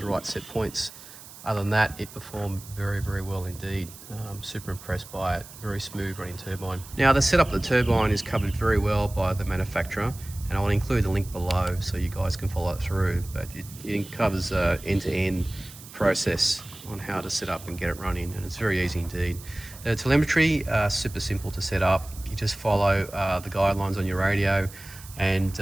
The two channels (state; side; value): noise; right; hiss, 17 dB below the sound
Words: right set points. Other than that, it performed very, very well indeed. Super impressed by it. Very smooth running turbine. Now, the setup of the turbine is covered very well by the manufacturer, and I'll include the link below so you guys can follow it through. But it covers end-to-end process on how to set up and get it running, and it's very easy indeed. The telemetry, super simple to set up. You just follow the guidelines on your radio, and